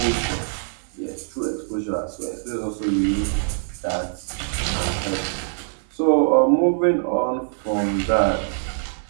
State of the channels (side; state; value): left; silent; digital silence